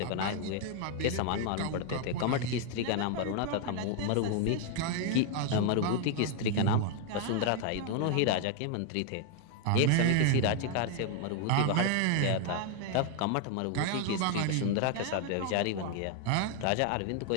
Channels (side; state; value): both; different; correlation 0.00